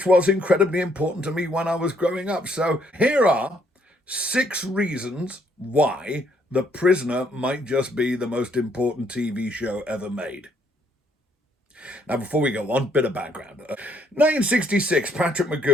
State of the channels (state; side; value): normal; both; correlation 0.68